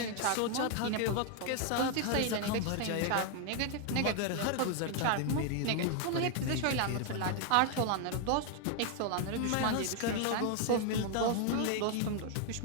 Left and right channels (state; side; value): different; both; correlation 0.00